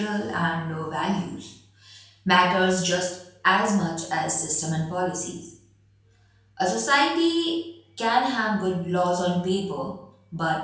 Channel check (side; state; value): both; identical; correlation 1.00